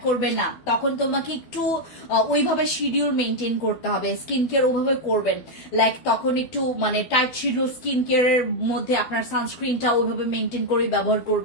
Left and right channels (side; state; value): right; late; 12 ms